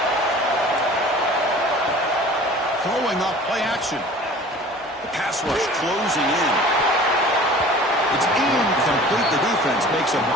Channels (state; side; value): normal; both; correlation 0.45